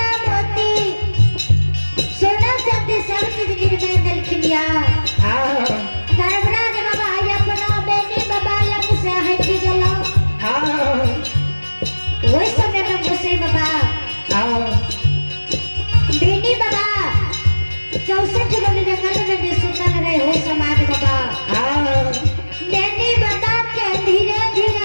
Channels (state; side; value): inverted; both; correlation -1.00